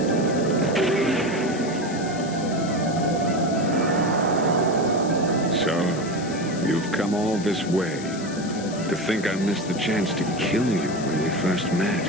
So, you've come all this way. To think I missed the chance to kill you when we first met.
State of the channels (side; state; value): left; noise; hiss, 14 dB below the sound